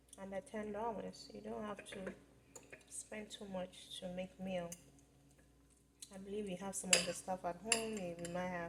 under $10. You don't have to spend too much to make meal. I believe you have some of the stuff at home. You might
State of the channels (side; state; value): both; identical; correlation 1.00